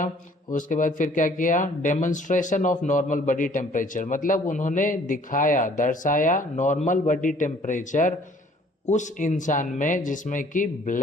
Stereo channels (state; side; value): normal; both; correlation 0.57